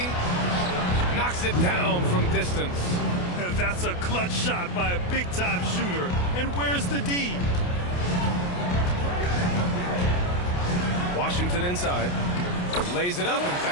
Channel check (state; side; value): late; right; 28 ms